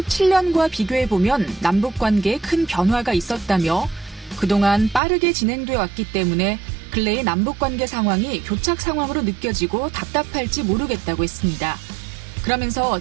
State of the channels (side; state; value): left; drops out; at 5.0 s